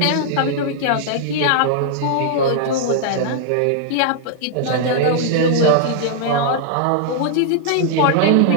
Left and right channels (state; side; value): different; both; correlation -0.01